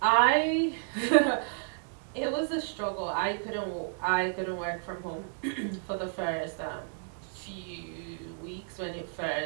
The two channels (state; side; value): silent; left; 57 dB below the other